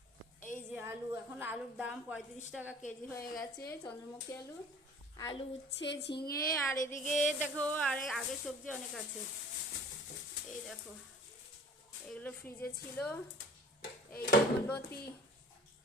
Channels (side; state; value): both; normal; correlation 0.48